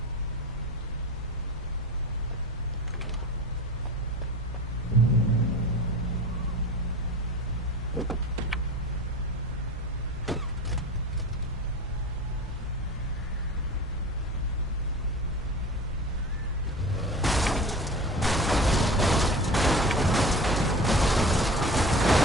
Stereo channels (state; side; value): normal; both; correlation 0.34